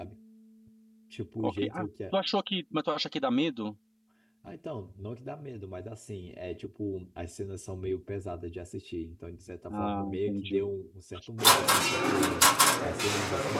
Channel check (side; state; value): both; identical; correlation 1.00